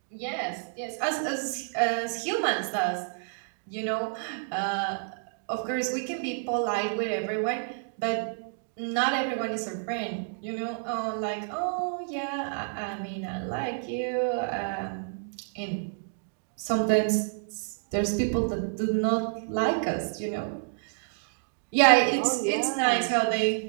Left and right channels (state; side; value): silent; left; digital silence